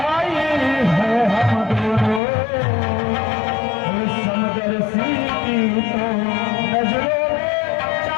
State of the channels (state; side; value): drops out; right; at 2.2 s